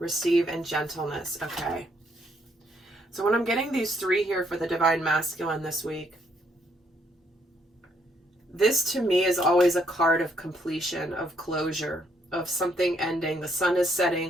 and gentleness. Okay. So when I'm getting these three here for the divine masculine this week, this to me is always a card of completion, of closure, of something ending. The sun is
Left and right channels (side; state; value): both; normal; correlation 0.71